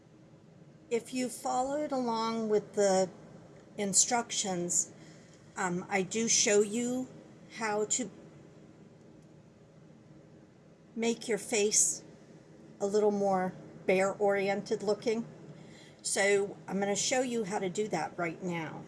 If you followed along with the instructions, I do show you how to make your face a little more bear-oriented looking. So I'm going to show you how to do that right now.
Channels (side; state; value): both; identical; correlation 1.00